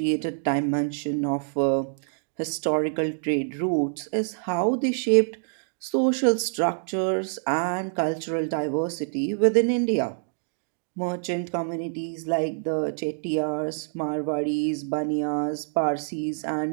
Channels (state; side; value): silent; left; digital silence